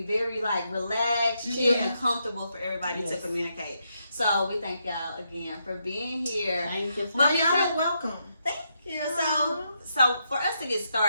very like relaxed, chill, and comfortable for everybody to Yes. communicate. So we thank y'all again for being here. Thank you. But Y'all are welcome. Thank you. So for us to get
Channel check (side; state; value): both; inverted; correlation -0.80